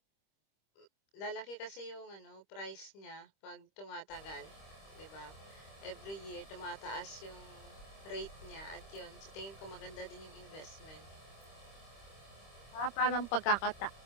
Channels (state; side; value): late; right; 25 ms